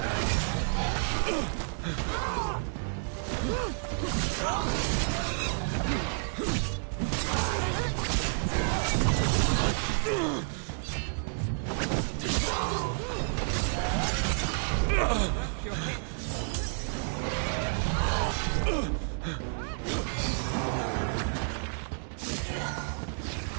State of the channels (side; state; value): left; silent; digital silence